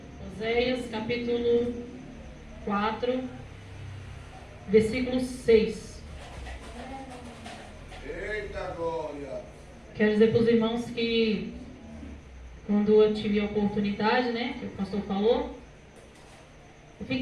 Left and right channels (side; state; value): both; identical; correlation 1.00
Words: Oséias, capítulo 4, versículo 6. Eita glória! Quero dizer para os irmãos que quando eu tive a oportunidade, né, que o pastor falou, eu